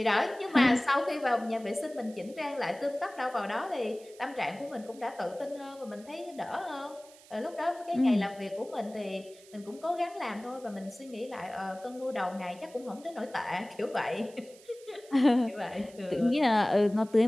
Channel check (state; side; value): noise; right; hiss, 23 dB below the sound